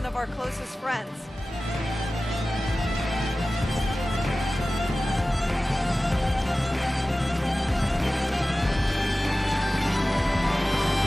of our closest friends.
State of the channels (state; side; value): normal; both; correlation 0.96